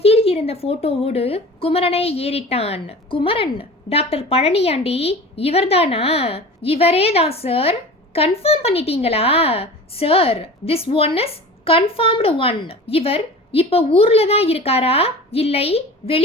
இருந்த போட்டோவோடு குமரனை ஏறிட்டான். குமரன், டாக்டர் பழனியாண்டி இவர்தானா? இவரே தான் சார். கன்ஃபார்ம் பண்ணிட்டீங்களா sir? This one is confirmed one. இவர் இப்ப ஊர்ல தான் இருக்காரா இல்லை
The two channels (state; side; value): normal; both; correlation 0.37